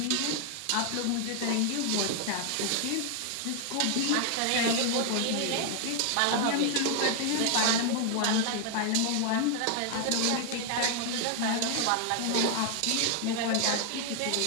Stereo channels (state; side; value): different; both; correlation 0.00